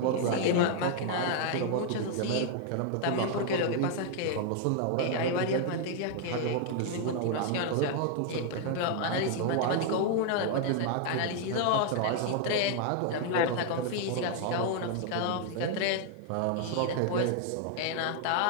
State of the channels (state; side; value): different; both; correlation 0.00